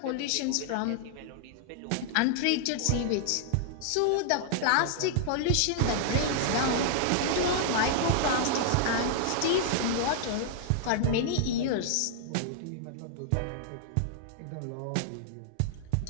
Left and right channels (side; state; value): both; different; correlation -0.01